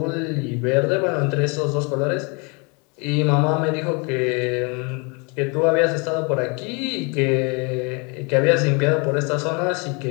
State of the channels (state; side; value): quieter; right; 31.7 dB